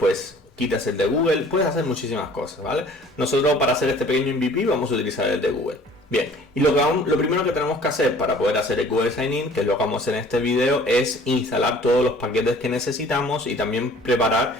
quitas el de Google. Puedes hacer muchísimas cosas, ¿vale? Nosotros, para hacer este pequeño MVP, vamos a utilizar el de Google. Bien, y lo primero que tenemos que hacer para poder hacer el Google Sign In, que es lo que vamos a hacer en este video, es instalar todos los paquetes que necesitamos y también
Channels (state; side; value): normal; both; correlation 0.51